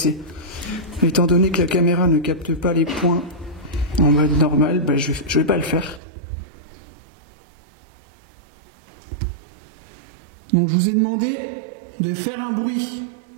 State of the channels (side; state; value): left; drops out; at 6.0 s